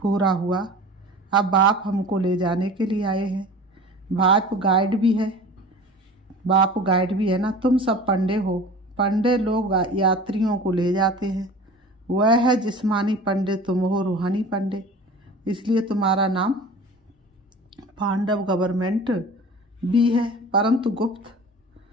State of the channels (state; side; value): normal; both; correlation 0.39